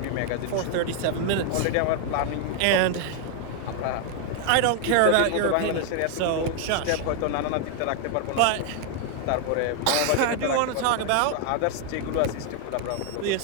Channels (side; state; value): both; different; correlation 0.00